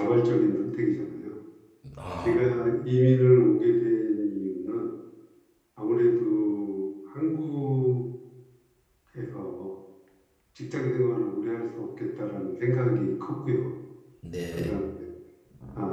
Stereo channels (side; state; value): both; identical; correlation 1.00